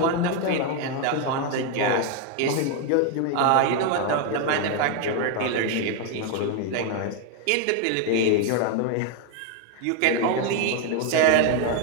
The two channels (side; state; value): both; different; correlation 0.01